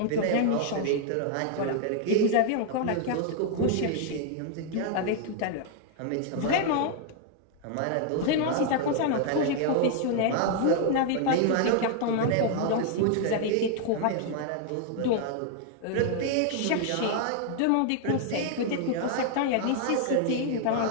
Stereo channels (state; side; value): different; both; correlation 0.00